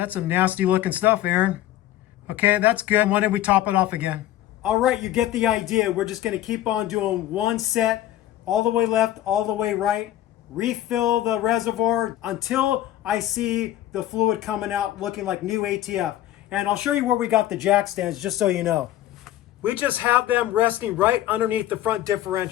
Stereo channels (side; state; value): right; quieter; 13.4 dB